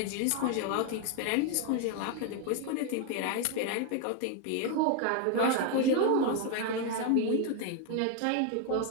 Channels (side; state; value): both; different; correlation 0.01